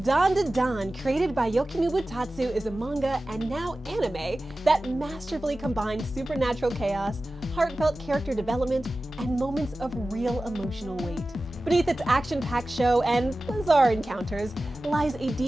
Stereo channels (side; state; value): both; normal; correlation 0.96